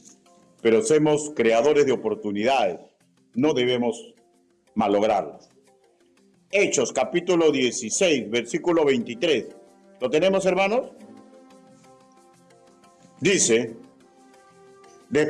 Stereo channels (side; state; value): both; identical; correlation 1.00